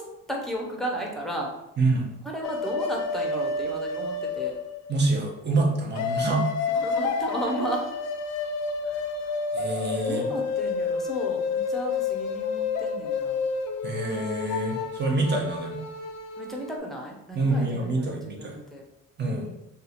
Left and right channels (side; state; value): both; normal; correlation 0.37